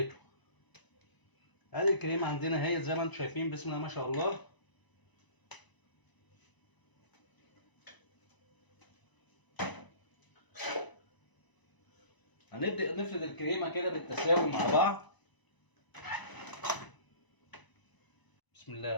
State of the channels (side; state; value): right; late; 1.0 ms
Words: ادي الكريمه عندنا هي زي ما انتم شايفين بسم الله ما شاء الله. هنبدأ نفرد الكريمة كده بالتساوي مع بعض. بسم